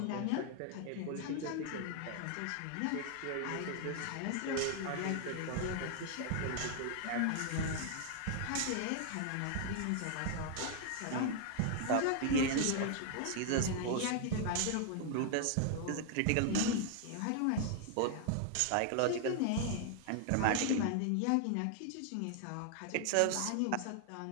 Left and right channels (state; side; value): different; both; correlation 0.00